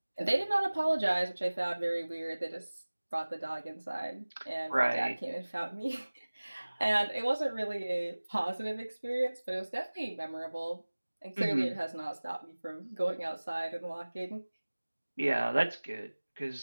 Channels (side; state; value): both; inverted; correlation -1.00